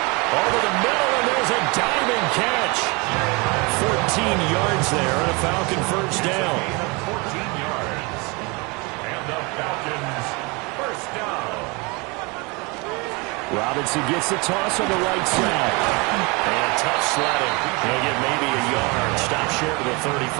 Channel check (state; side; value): quieter; left; 28.1 dB